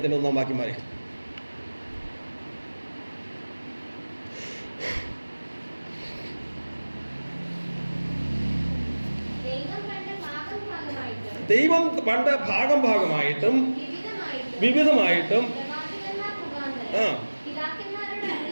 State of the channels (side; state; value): both; inverted; correlation -1.00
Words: 1-ാം വാക്യം വരെ. ദൈവം പണ്ട് ഭാഗമായിട്ടും വിവിധമായിട്ടും